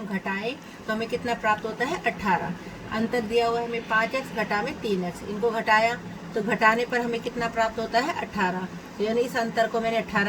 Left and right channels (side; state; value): both; identical; correlation 1.00